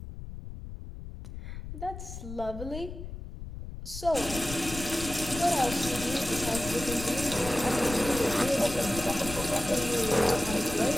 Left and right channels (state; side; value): noise; left; rumble, 10 dB below the sound